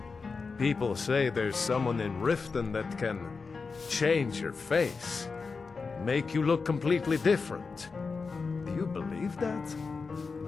People say there's someone in Riften that can change your face, make you look completely different. Do you believe that?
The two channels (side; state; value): right; quieter; 4.7 dB